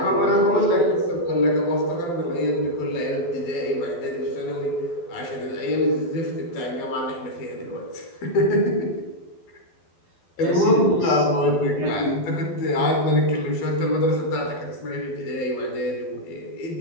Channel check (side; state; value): right; late; 12 ms